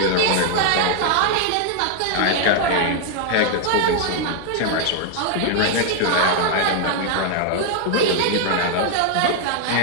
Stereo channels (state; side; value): different; both; correlation 0.00